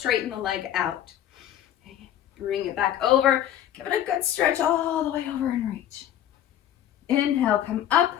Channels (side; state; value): right; quieter; 11.3 dB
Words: the leg out. Okay. Bring it back over. Give it a good stretch all the way over and reach. Inhale, come up.